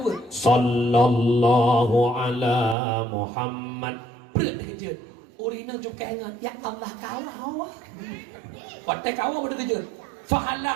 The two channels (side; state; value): left; drops out; at 2.8 s